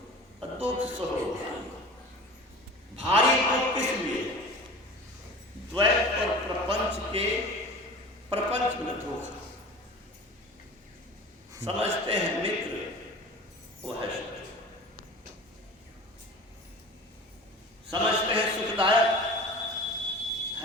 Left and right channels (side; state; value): both; normal; correlation 0.38